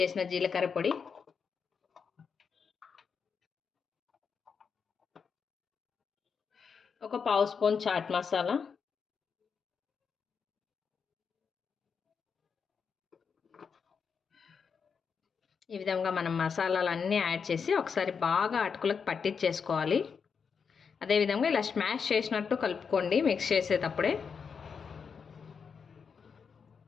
జీలకర్ర పొడి, 1/2 స్పూన్ చాట్ మసాలా, ఈ విధంగా మనం మసాలాలన్నీ యాడ్ చేసి ఒకసారి బాగా అటుకులకు పట్టించేసుకోవాలి. అదేవిధంగా ఇలా స్మాష్ చేసినట్టు కలుపుకోండి మిక్స్ చేసేటప్పుడే.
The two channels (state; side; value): quieter; right; 6.1 dB